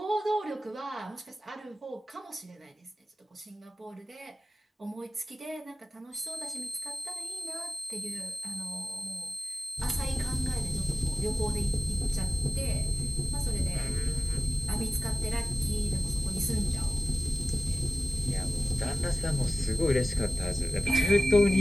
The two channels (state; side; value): normal; both; correlation 0.96